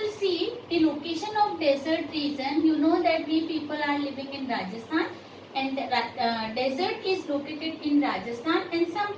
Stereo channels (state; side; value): identical; both; correlation 1.00